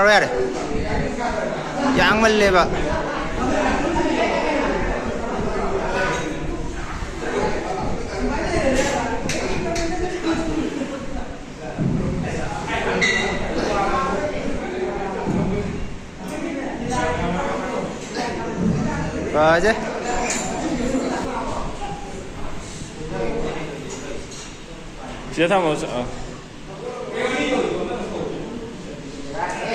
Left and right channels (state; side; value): identical; both; correlation 1.00